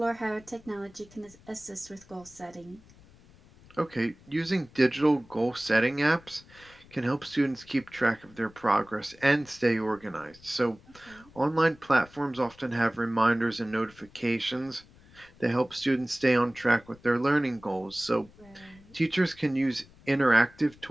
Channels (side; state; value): left; noise; rumble, 25 dB below the sound